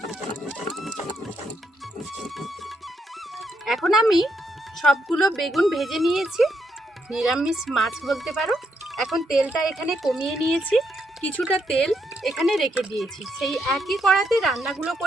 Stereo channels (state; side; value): normal; both; correlation 0.77